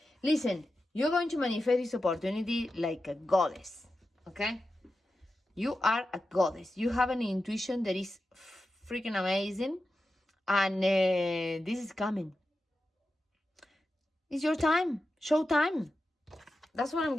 Listen, you're going to manifest this opportunity like a goddess, okay? You are a goddess. You have an intuition that is freaking amazing, and this is coming. It's your time. Show time. That's what I'm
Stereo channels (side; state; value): both; normal; correlation 0.91